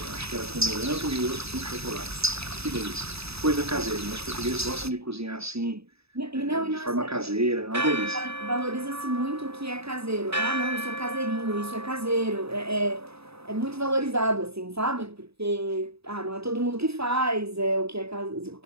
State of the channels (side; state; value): left; late; 0.78 ms